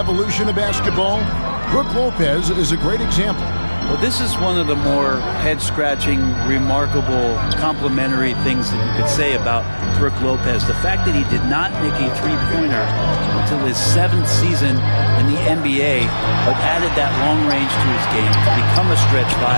of basketball, Brook Lopez is a great example. Well, this is one of the more head-scratching, remarkable, complimentary things that you could say about Brook Lopez. The fact that he did not make a three-pointer until his 7th season in the NBA, but added that long range to his game to become a stretch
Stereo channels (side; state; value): both; inverted; correlation -1.00